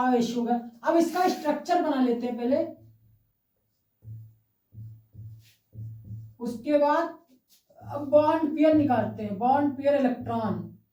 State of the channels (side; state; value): both; identical; correlation 1.00